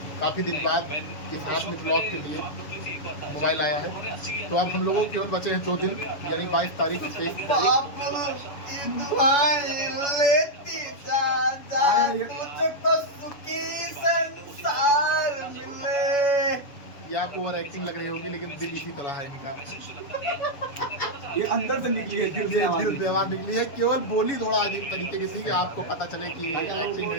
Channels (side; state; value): right; late; 7.1 ms